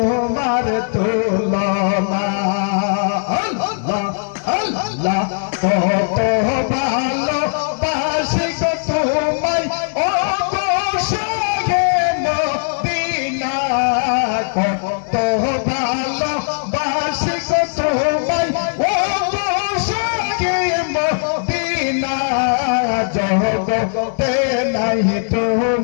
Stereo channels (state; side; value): silent; right; 66 dB below the other